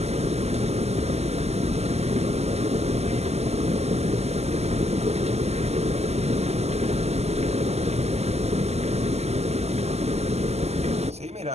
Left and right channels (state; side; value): late; left; 0.31 ms